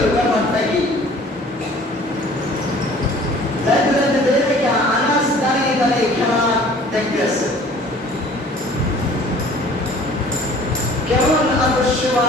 ব্যাপারটা কি? যাইতে যাইতে দেখে আনাস দাঁড়িয়ে দাঁড়িয়ে খেলা দেখতেছে। কেমন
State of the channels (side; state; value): both; normal; correlation 0.50